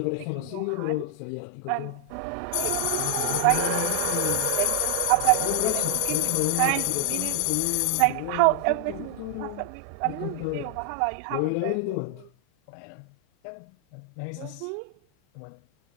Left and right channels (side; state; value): both; different; correlation 0.00